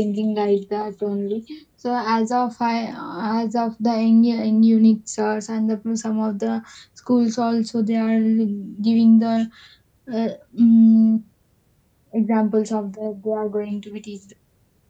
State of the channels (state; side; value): identical; both; correlation 1.00